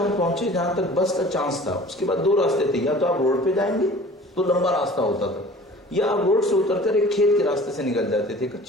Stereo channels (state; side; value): normal; both; correlation 0.45